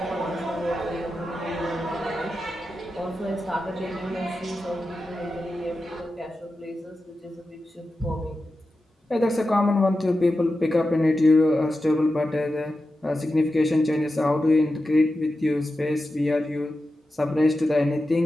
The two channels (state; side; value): normal; both; correlation 0.91